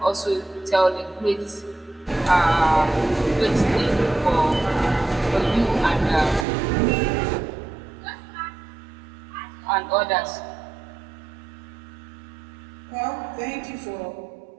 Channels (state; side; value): drops out; left; at 6.5 s